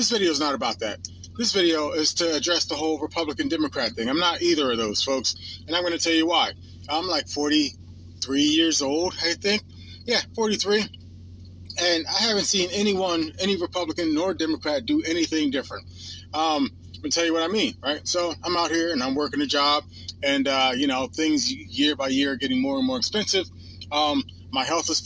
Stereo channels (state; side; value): identical; both; correlation 1.00